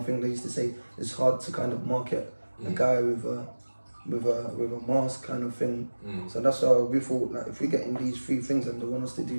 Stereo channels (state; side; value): inverted; both; correlation -1.00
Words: think they used to say, it's hard to kind of market a guy with a mask kind of thing. So that's why we thought, like, if we get in these three things and they want us to